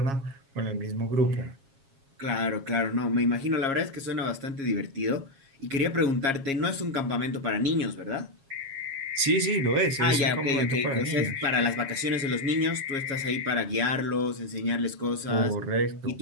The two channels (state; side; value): late; left; 7.3 ms